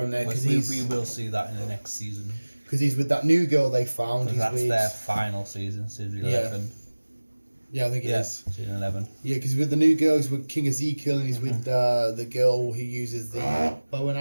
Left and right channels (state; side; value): inverted; both; correlation -1.00